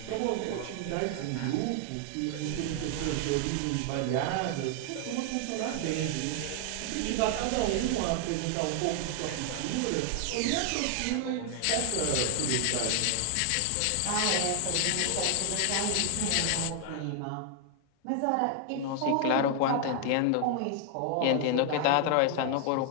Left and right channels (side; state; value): both; different; correlation 0.00